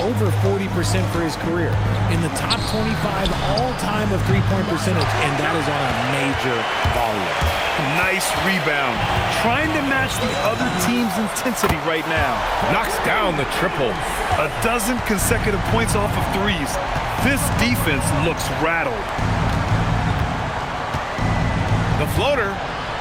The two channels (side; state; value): both; identical; correlation 1.00